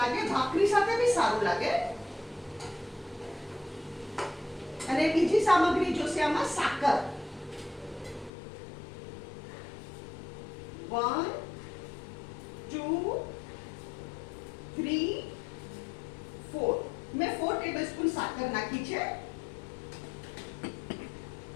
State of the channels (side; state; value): right; drops out; at 8.3 s